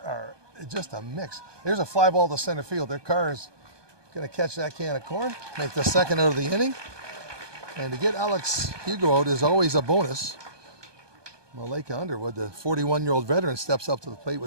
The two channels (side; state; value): left; late; 1.2 ms